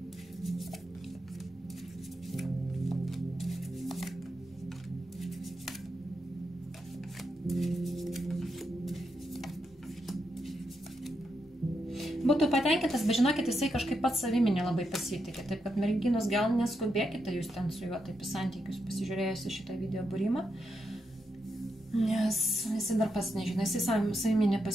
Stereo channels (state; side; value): normal; both; correlation 0.83